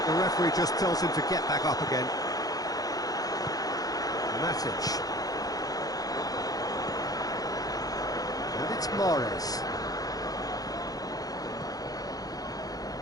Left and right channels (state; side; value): late; right; 0.18 ms